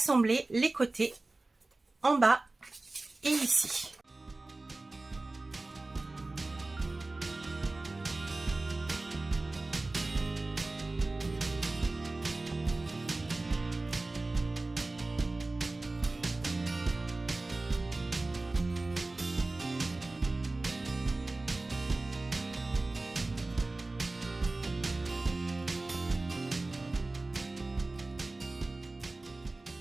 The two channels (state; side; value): quieter; left; 3.1 dB